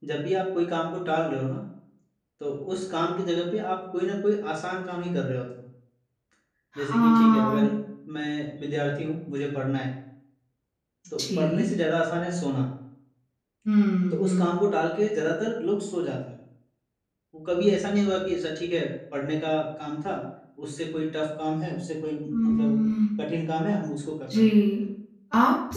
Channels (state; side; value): identical; both; correlation 1.00